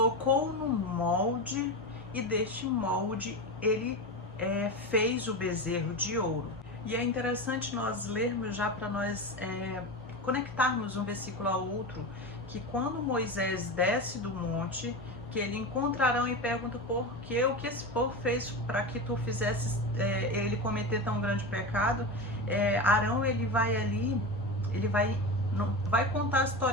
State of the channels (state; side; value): normal; both; correlation 0.22